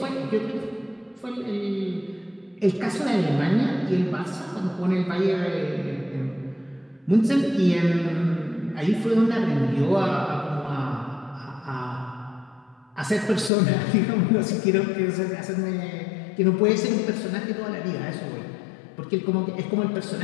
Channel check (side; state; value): right; drops out; at 13.5 s